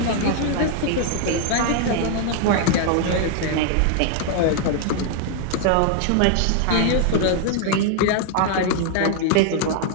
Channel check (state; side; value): different; both; correlation 0.00